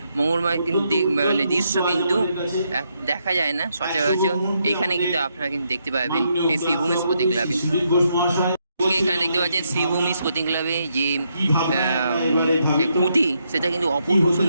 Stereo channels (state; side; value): inverted; both; correlation -0.78